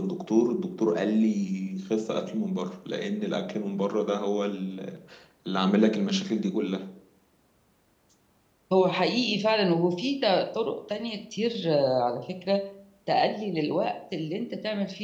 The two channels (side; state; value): both; identical; correlation 1.00